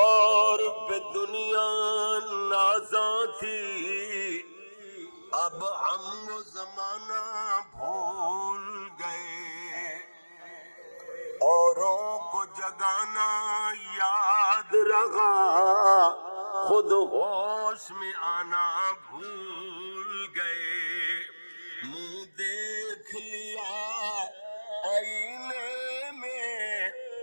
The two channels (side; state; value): both; inverted; correlation -1.00